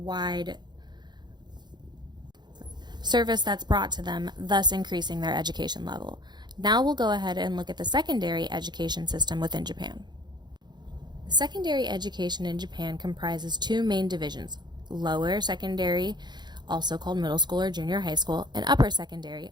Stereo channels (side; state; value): left; late; 0.21 ms